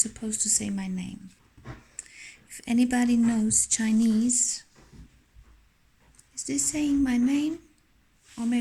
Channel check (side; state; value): both; identical; correlation 1.00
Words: supposed to say my name. If anybody knows Chinese, is this saying my name? Or